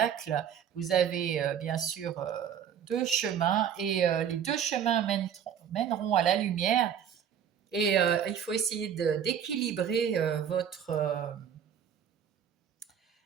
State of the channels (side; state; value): left; quieter; 8.6 dB